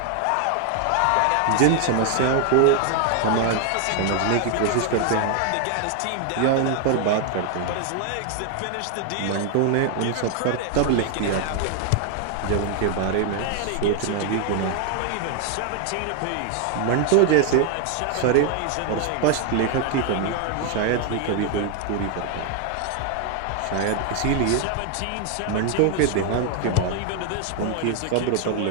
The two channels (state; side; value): different; both; correlation 0.00